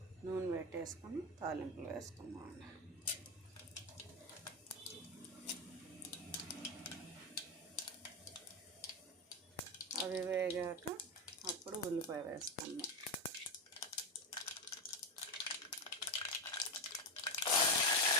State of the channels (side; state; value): both; normal; correlation 0.12